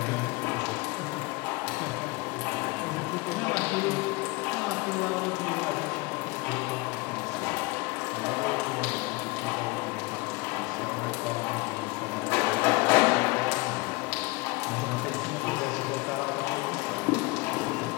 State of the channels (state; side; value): quieter; right; 25.1 dB